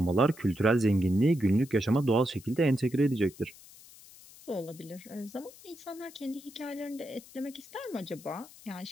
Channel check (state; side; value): noise; left; hiss, 21 dB below the sound